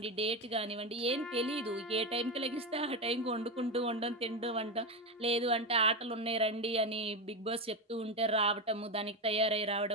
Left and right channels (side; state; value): both; normal; correlation 0.14